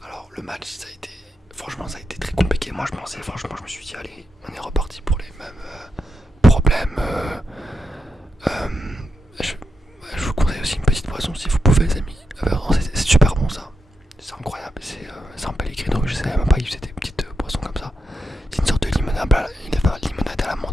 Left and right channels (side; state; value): both; normal; correlation 0.85